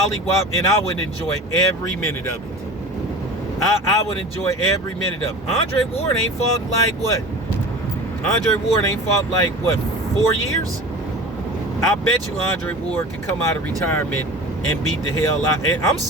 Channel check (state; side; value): normal; both; correlation 0.36